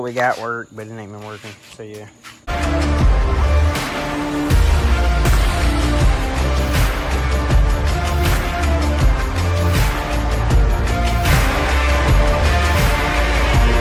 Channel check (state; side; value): identical; both; correlation 1.00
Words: we got work, but it ain't been working, so yeah.